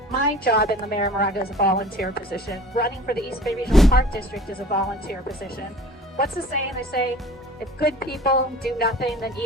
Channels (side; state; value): both; normal; correlation 0.45